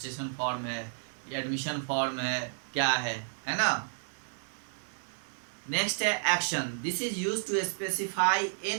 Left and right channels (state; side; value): silent; left; digital silence